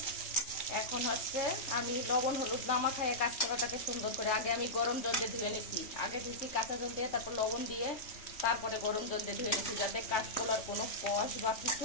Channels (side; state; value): right; late; 3.3 ms